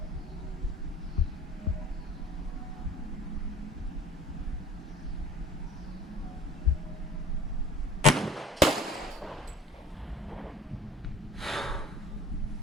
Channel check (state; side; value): normal; both; correlation 0.47